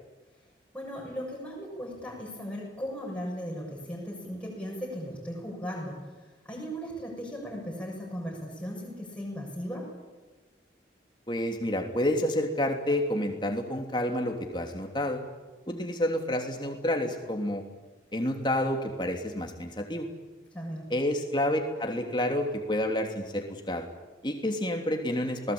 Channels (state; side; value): normal; both; correlation 0.53